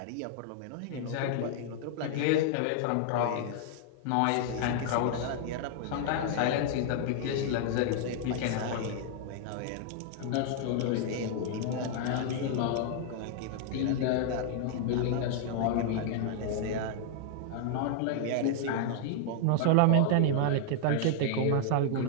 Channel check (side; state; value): both; different; correlation -0.01